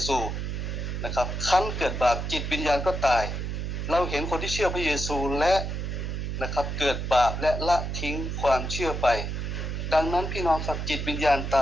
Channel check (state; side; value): noise; right; hum, 3 dB below the sound